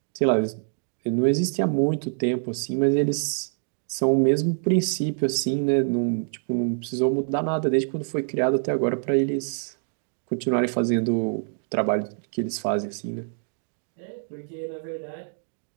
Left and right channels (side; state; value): left; silent; digital silence